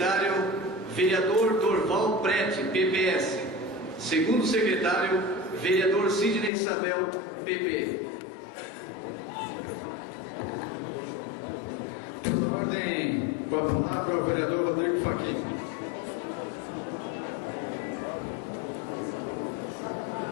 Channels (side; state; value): right; drops out; at 6.5 s